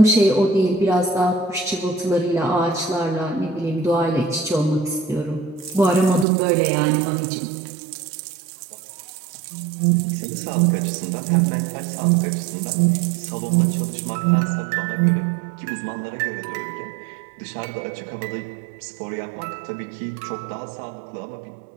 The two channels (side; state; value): left; drops out; at 6.2 s